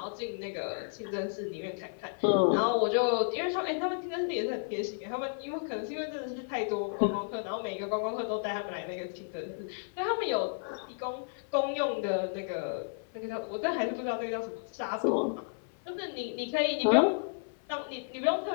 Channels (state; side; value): silent; right; 56 dB below the other